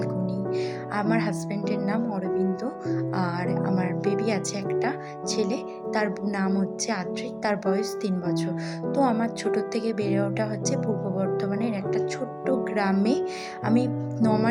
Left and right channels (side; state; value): both; identical; correlation 1.00